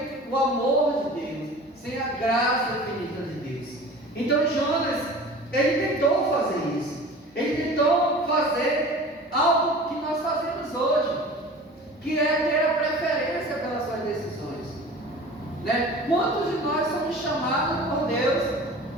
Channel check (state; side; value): normal; both; correlation 0.40